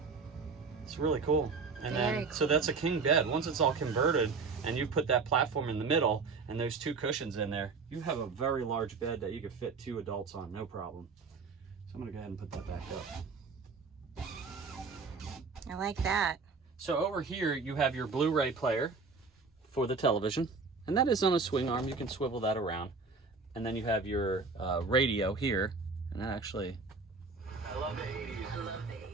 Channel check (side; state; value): left; quieter; 4.5 dB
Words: It's really cool. And then, so that's a king bed. Once it's all converted and you put that platform in the middle and those two cushions in there, you have a very large bed that you could fit 2 adults on, no problem. So I'm gonna go ahead and put that back up. I like that. So over here you have your Blu-ray player for the television, and that is on a swing arm. You can swivel that around. And then you have your radio here, and that actually, I love the 80s.